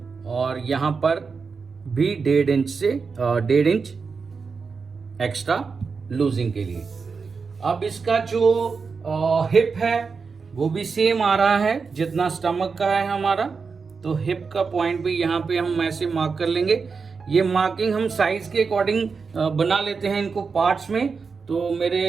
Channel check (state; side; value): quieter; left; 5.1 dB